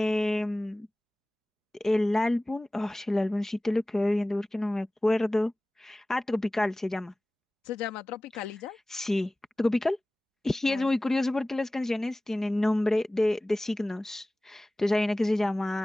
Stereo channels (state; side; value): normal; both; correlation 0.98